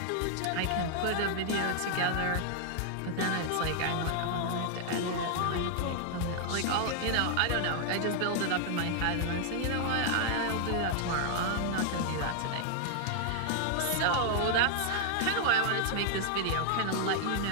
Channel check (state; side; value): different; both; correlation 0.00